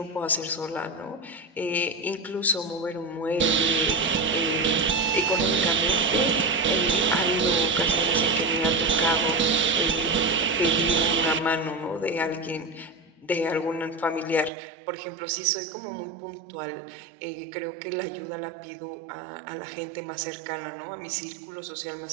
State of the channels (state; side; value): drops out; left; at 14.5 s